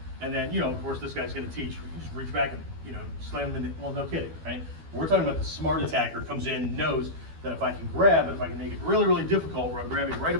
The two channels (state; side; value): late; left; 12 ms